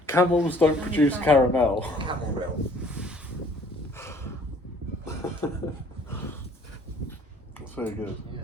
Camels don't produce caramel. Camel milk. That's very good. Yeah,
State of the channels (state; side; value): normal; both; correlation 0.56